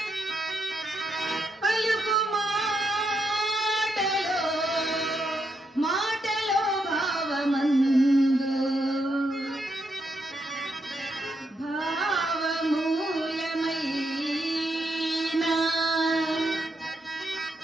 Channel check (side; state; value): both; normal; correlation 0.80